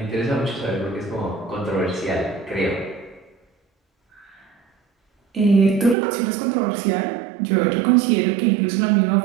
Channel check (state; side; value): drops out; left; at 6.0 s